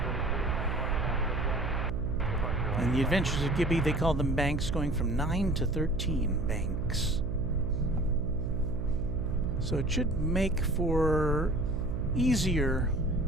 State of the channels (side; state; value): right; noise; hum, 3 dB below the sound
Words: In the Adventures of Gibby, they call them banks, going from 9 to 13 banks. So it should make for easier